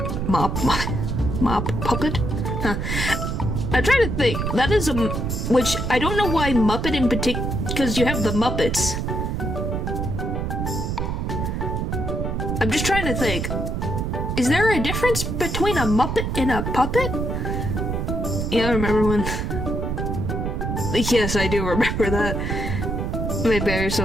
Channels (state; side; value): noise; right; rumble, 1 dB below the sound